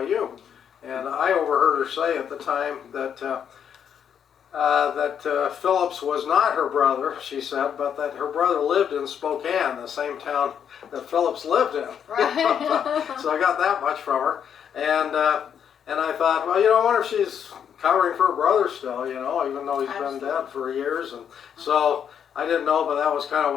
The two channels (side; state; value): right; quieter; 8.3 dB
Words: And I overheard her say at the time that Phillips was not her brother, she said, but that her brother lived in Spokane, the same town that Phillips lived in. Right. So I got that much from her. And I thought, well, I wonder if she's covering for her brother still, even though he's been dead for years. And so I didn't know, but that was kind of